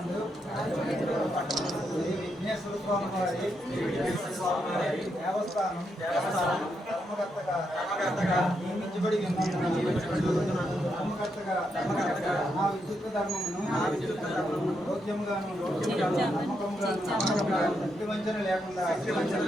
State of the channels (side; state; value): both; normal; correlation 0.81